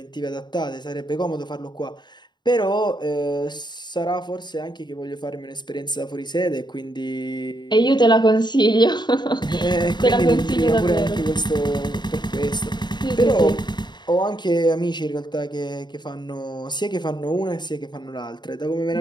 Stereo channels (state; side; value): late; right; 0.21 ms